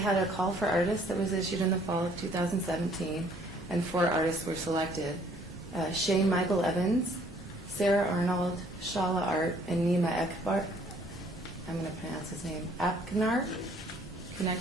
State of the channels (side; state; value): both; normal; correlation 0.61